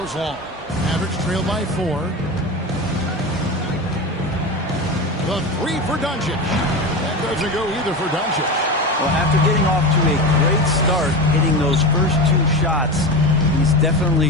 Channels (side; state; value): both; normal; correlation 0.24